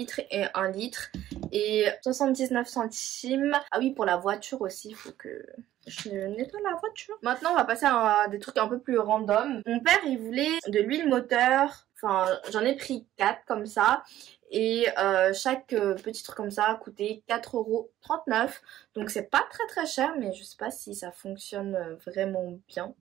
et 1 litre. Et 79 centimes. Ah oui, pour la voiture aussi, il faut que je nettoie la voiture. Maintenant on va passer à des trucs un peu plus random. Mon père il voulait de l'huile moteur. Enfin j'en ai pris 4 comme ça. Et chaque petit truc comme ça a coûté 4,39 €. Donc c'est pas très cher mais je sais pas si ça fonctionne vraiment bien.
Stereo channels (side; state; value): left; quieter; 13.3 dB